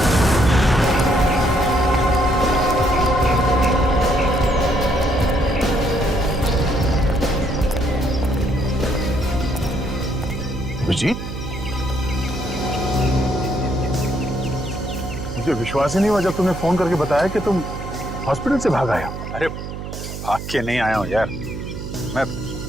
अभिजीत, मुझे विश्वास ही नहीं हुआ जब तुमने फोन करके बताया कि तुम हॉस्पिटल से भाग आए हो। अरे भाग के नहीं आया हूँ यार, मैं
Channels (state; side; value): noise; right; hum, 8 dB below the sound